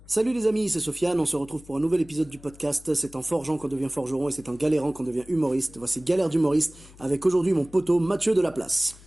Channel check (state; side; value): noise; left; hum, 22 dB below the sound